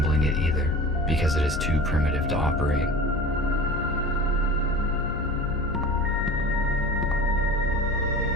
it either, because it is too primitive to operate.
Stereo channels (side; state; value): left; noise; hum, 8 dB below the sound